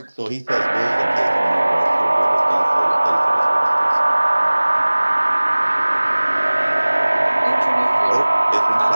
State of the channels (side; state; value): both; inverted; correlation -1.00